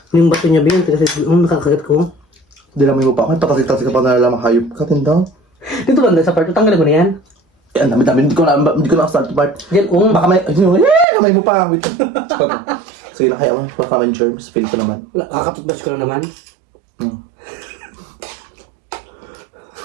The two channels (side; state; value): left; drops out; at 11.1 s